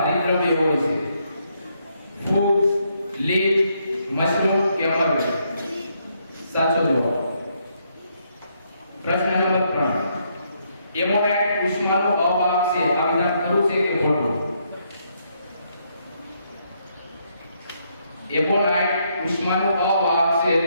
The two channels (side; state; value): both; inverted; correlation -0.74